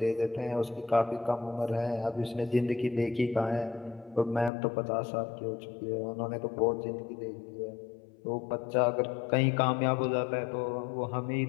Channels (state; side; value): drops out; right; at 4.5 s